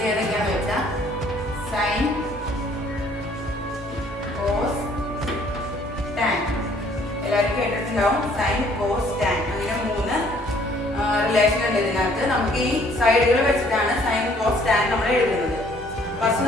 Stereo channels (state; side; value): normal; both; correlation 0.60